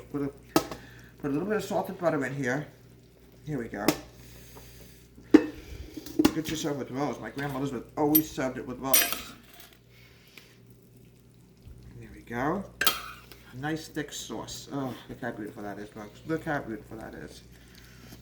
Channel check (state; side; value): identical; both; correlation 1.00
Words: Put a little bit of salt and butter in here. Here we go. Get yourself with rolls. My Grandma Elizabeth always served it with rolls. There we go. A nice thick sauce. Oh, look how beautiful that is, folks. Look how beautiful that is.